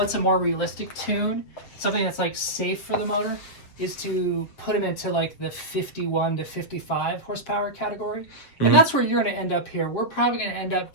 a more realistic tune? Something that's like safe for the motor is to put them into like the 51 to 55 horsepower category. And that's where you're going to end up here. We're probably going to end up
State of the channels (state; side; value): late; right; 7.4 ms